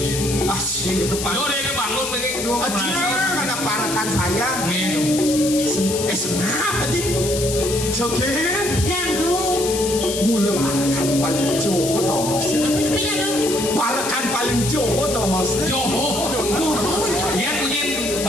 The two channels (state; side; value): noise; left; hiss, 5 dB below the sound